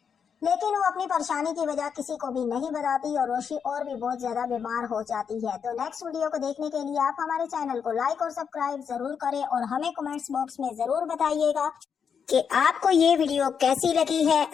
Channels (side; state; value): right; quieter; 6.9 dB